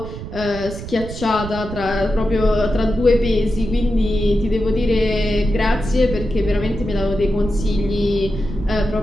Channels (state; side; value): noise; right; rumble, 9 dB below the sound